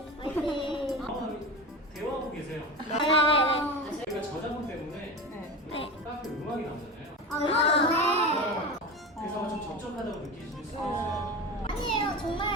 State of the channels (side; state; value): both; normal; correlation 0.26